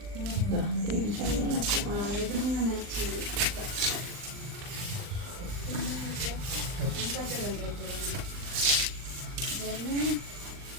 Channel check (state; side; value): late; left; 39 ms